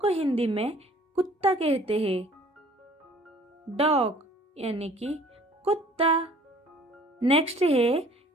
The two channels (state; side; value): normal; both; correlation 0.53